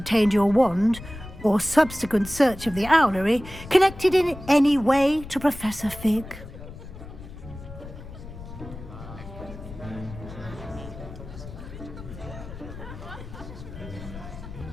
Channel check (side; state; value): left; noise; rumble, 13 dB below the sound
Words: your wand or subsequent search of the owlery connected in any way to Professor Fig?